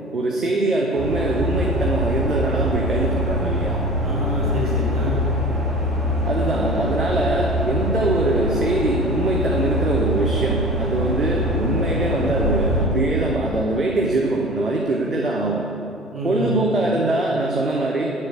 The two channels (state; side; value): normal; both; correlation 0.40